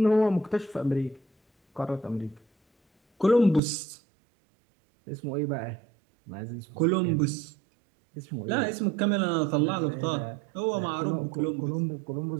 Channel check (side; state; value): left; drops out; at 3.6 s